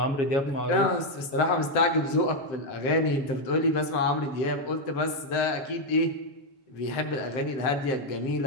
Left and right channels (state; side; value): late; right; 7.7 ms